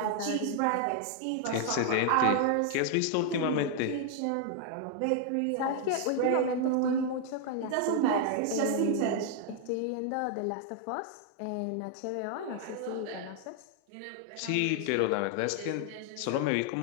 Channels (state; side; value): different; both; correlation 0.00